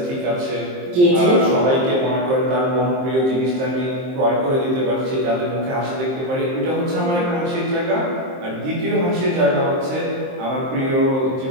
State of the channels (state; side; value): late; left; 23 ms